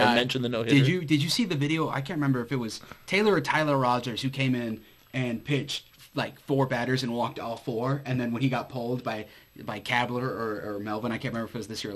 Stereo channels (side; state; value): both; identical; correlation 1.00